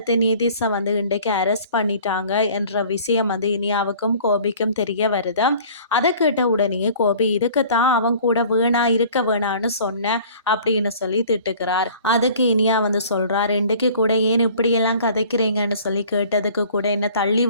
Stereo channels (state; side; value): inverted; both; correlation -0.49